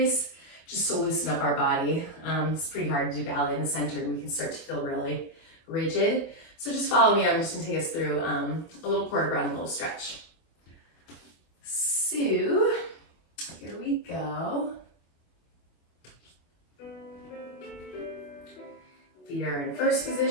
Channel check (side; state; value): right; late; 24 ms